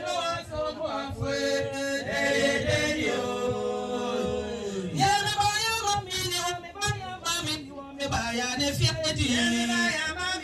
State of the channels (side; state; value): both; identical; correlation 1.00